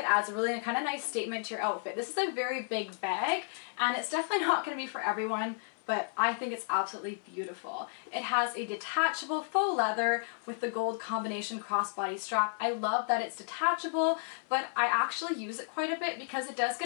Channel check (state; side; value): silent; right; 56 dB below the other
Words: adds a really kind of nice statement to your outfit. This is a very big bag, and it's definitely not going to be for everyone, but I think it's absolutely beautiful. It has a detachable faux leather with the gold combination crossbody strap. I love that it's detachable, but I actually use it quite a bit because it does